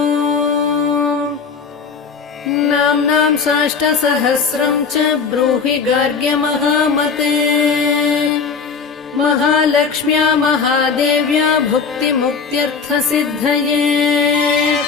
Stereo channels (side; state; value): right; quieter; 5.5 dB